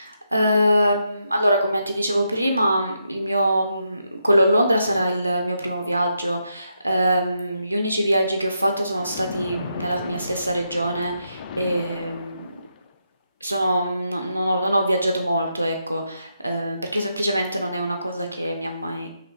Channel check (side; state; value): both; inverted; correlation -0.82